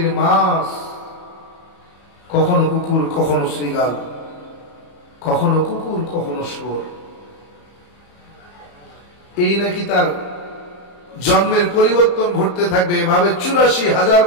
মাছ, কখনো কুকুর, কখনো শ্রীগাল, কখনো কুকুর, কখনো শুয়োর। এই নাকি তার জন্মের পরিবর্তন ঘটতে থাকবে। এভাবে 84,000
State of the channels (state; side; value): late; right; 34 ms